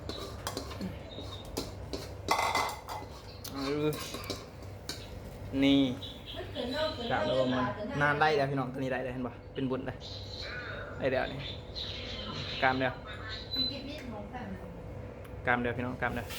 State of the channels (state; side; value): identical; both; correlation 1.00